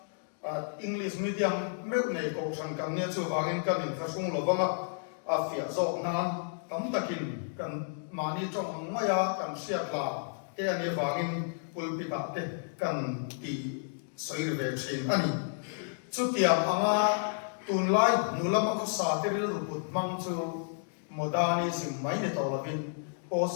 english medium me nei ko sang kan nia chu wangin kan in khasung lovanga a fia zo nan tam takin kan mani trong maya kan sia la te ani wangin pulpita te kan ti soir ve thin ani chutiam anga tunlai nulam ko sa te ril ruput mang chu modernism mai ne tawlavin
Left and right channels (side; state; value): right; silent; digital silence